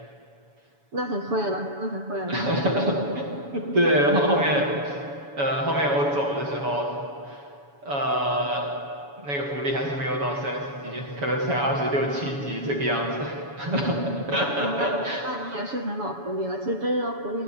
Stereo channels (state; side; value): late; left; 7.1 ms